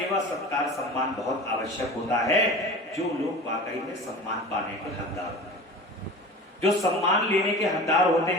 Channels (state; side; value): normal; both; correlation 0.36